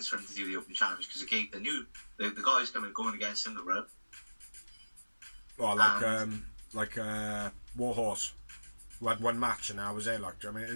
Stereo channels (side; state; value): both; inverted; correlation -1.00